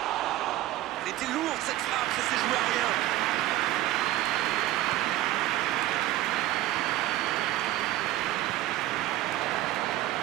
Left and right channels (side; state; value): left; quieter; 15.2 dB